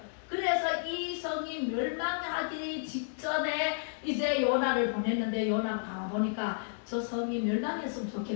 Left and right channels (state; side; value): silent; right; digital silence